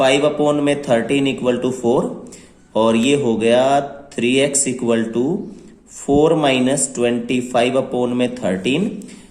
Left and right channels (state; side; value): identical; both; correlation 1.00